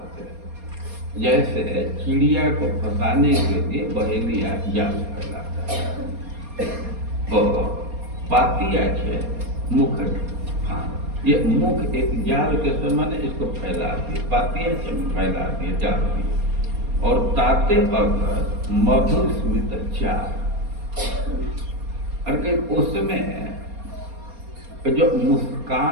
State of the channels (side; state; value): left; late; 4.2 ms